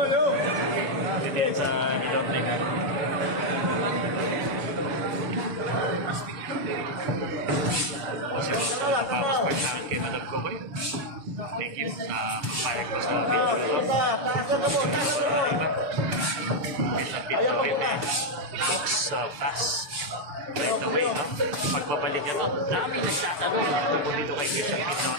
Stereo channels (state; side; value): late; left; 6.9 ms